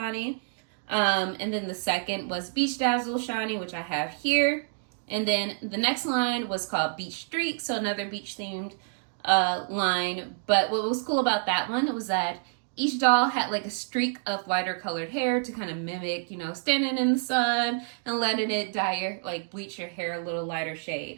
And then the second was Beach Dazzle Shani, which I have here. And then the next line was called Beach Streak, so another beach themed line. But what was cool about that one was that each doll had like a streak of lighter colored hair to kind of mimic, you know, standing in the sun and letting it dye your, like bleach your hair a little lighter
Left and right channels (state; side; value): silent; left; digital silence